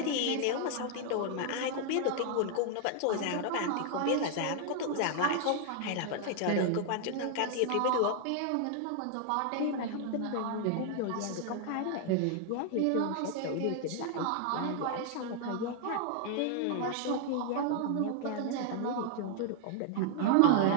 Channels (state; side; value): different; both; correlation 0.00